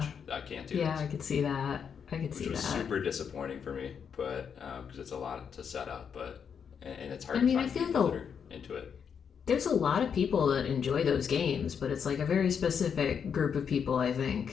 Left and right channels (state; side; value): quieter; right; 7.1 dB